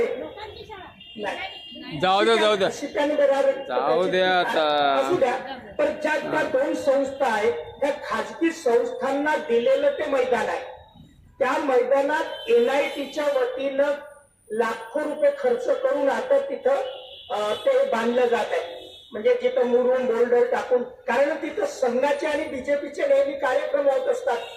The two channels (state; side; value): identical; both; correlation 1.00